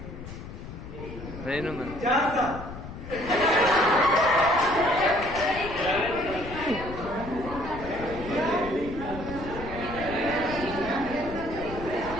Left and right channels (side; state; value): left; noise; rumble, 11 dB below the sound